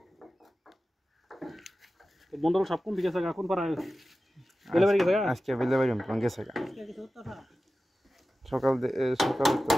বন্ধুরা সব কোন দিকে গেছে কোন পাড়া বেলে বাড়ি গেছে আজকে বেলে বাড়ি আমি গেছে সকাল সকাল তো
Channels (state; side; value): normal; both; correlation 0.94